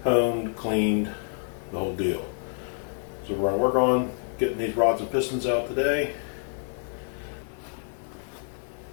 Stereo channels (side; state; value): right; silent; digital silence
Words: honed, cleaned, the whole deal. So we're going to work on getting these rods and pistons out today.